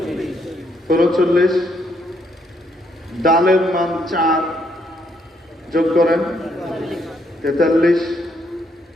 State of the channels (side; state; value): both; normal; correlation 0.73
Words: ৩৪। ডালের মান ৪, যোগ করেন ৪৩।